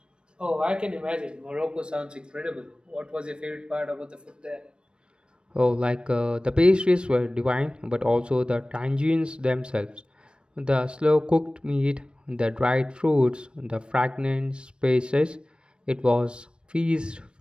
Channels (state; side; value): late; left; 0.055 ms